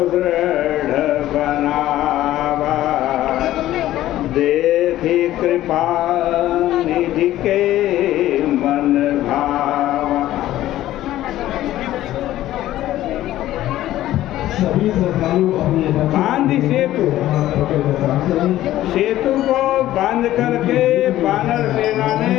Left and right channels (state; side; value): quieter; right; 14.2 dB